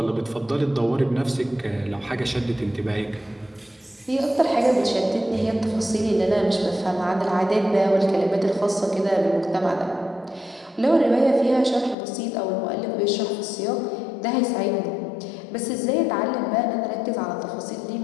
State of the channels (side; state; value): right; drops out; at 12.0 s